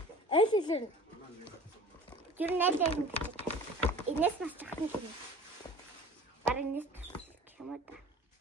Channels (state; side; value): normal; both; correlation 0.41